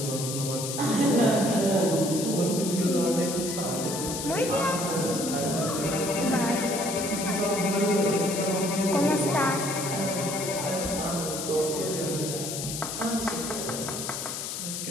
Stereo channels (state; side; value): noise; left; hiss, 5 dB below the sound